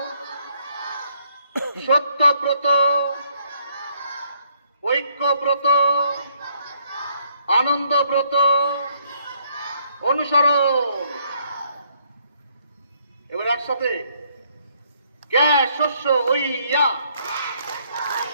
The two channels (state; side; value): inverted; both; correlation -0.69